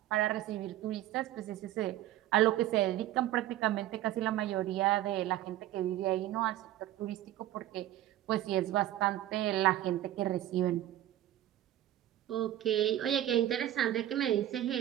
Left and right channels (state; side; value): quieter; left; 13.5 dB